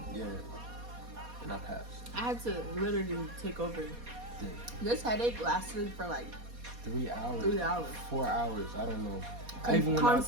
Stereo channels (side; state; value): left; late; 4.2 ms